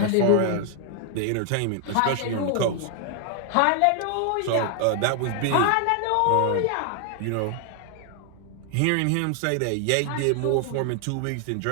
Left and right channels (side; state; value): both; different; correlation 0.00